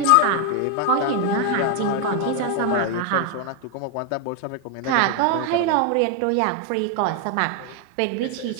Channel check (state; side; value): different; both; correlation 0.01